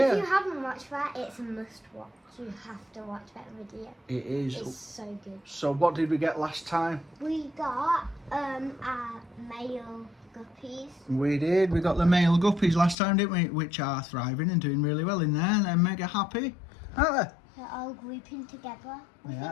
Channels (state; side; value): drops out; right; at 13.0 s